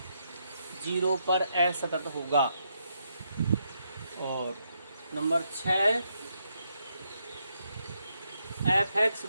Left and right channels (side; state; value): both; inverted; correlation -0.79